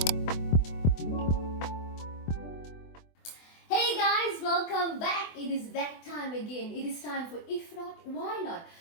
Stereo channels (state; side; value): late; right; 24 ms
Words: Hey guys, welcome back. It is that time again. It is time for If Not, Why Not?